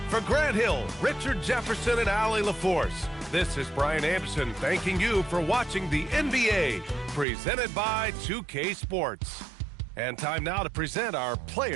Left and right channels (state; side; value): drops out; left; at 7.2 s